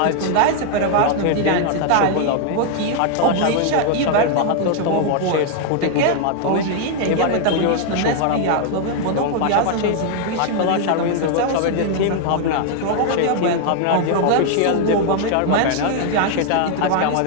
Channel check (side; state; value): both; different; correlation 0.00